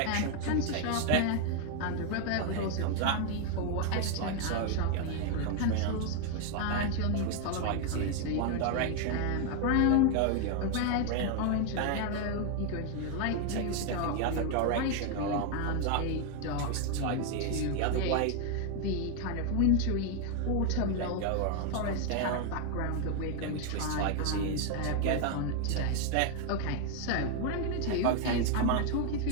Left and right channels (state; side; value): different; both; correlation 0.01